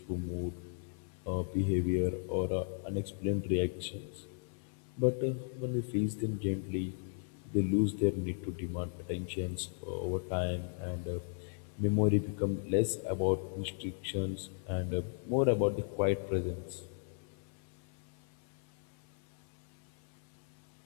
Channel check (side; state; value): right; silent; 54 dB below the other